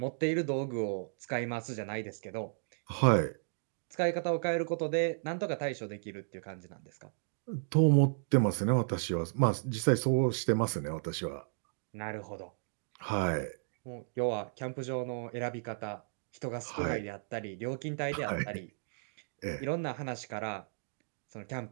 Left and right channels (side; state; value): left; silent; digital silence